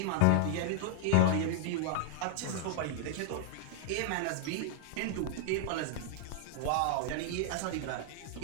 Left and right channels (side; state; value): both; different; correlation -0.01